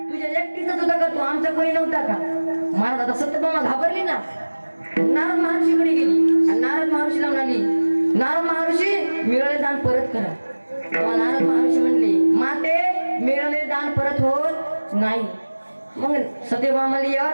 तुझ्या एकटीचाच होता का, तू आमचा कोणी नव्हता का? महाराज, आता सत्यभामा घाबरली ना. नारद महर्षीकडे गेली आणि नारद महर्षीला म्हणाली, नारद महर्षी, मिळालेले दान परत करा. तेव्हा नारद महर्षी म्हणले, माते, मिळालेले दान परत होत नाही. मग सत्यभामा म्हणली,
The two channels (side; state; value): both; inverted; correlation -1.00